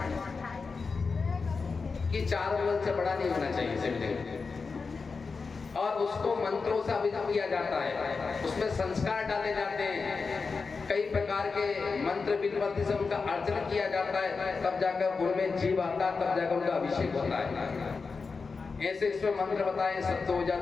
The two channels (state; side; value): quieter; right; 4.7 dB